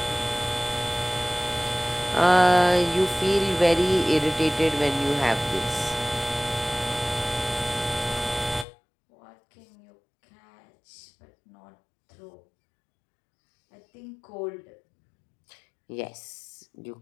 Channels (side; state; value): right; drops out; at 8.7 s